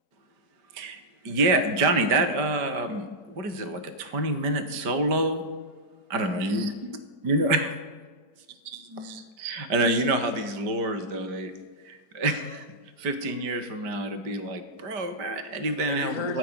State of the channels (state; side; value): late; left; 5.0 ms